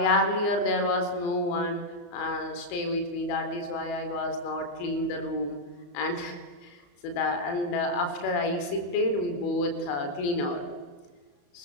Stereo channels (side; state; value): right; late; 34 ms